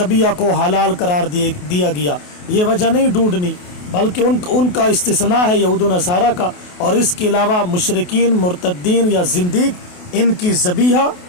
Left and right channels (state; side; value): late; right; 28 ms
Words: کو حلال قرار دیا گیا، یہ وجہ نہیں ڈھونڈنی، بلکہ ان کا استثناء ہے یہود و نصارہ کا، اور اس کے علاوہ مشرکین، مرتدین یا زندیق، ان کی ذبیحہ